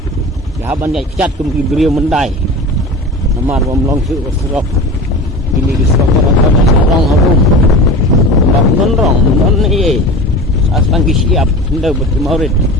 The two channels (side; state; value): both; normal; correlation 0.33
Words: Ya ban dai cat kum ki brio mendai. Namar bom long su serok. Ini ki serok rong habum. Ndak non ni. Aslan ki siap hendak bertemarid